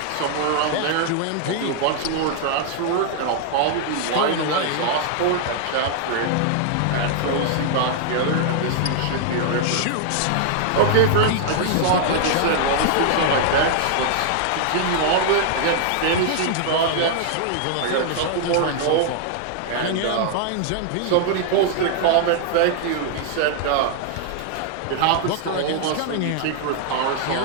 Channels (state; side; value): different; both; correlation 0.00